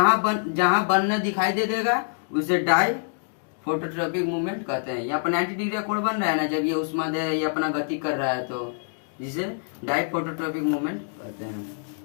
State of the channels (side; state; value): right; silent; digital silence